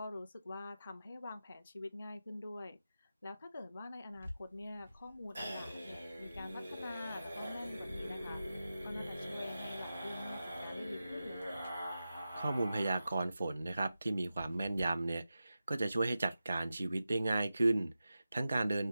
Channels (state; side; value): inverted; both; correlation -0.93